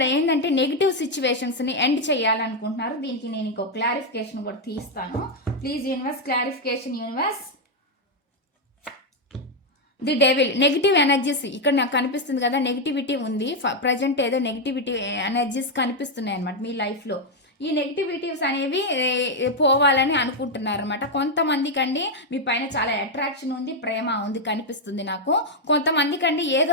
ఏంటంటే నెగిటివ్ సిచ్యువేషన్స్ని ఎండ్ చేయాలనుకుంటున్నారు. దీనికి నేను ఇంకో క్లారిఫికేషన్ కూడా తీస్తాను. Please universe clarification universe. The devil, negative energies ఇక్కడ నాకు కనిపిస్తుంది కదా, నెగిటివిటీ ఉంది ప్రజెంట్, ఏదో నెగిటివిటీ ఎనర్జీస్ కనిపిస్తున్నాయి అనమాట మీ లైఫ్లో. ఈ నెగిటివిటీస్ అనేవి పోవాలని అనుకుంటున్నారు అనమాట. కొంతమందికి అండి మీ పైన చాలా అట్రాక్షన్ ఉంది, ప్రేమ ఉంది కనిపిస్తుంది నాకు. కొంతమందికి అండి ఏదో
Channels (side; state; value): both; normal; correlation 0.02